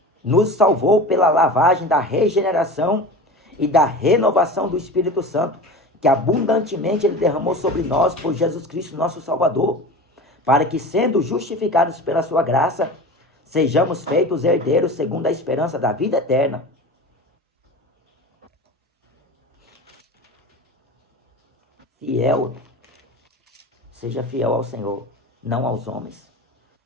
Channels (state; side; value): normal; both; correlation 0.33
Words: nos salvou pela lavagem da regeneração e da renovação do Espírito Santo, que abundantemente Ele derramou sobre nós por Jesus Cristo, nosso Salvador, para que, sendo justificados pela sua graça, sejamos feitos herdeiros segundo a esperança da vida eterna. Fiel, seja fiel ao Senhor, não aos homens.